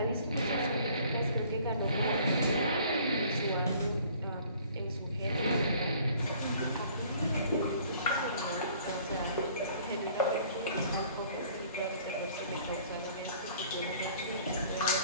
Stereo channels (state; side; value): inverted; both; correlation -0.55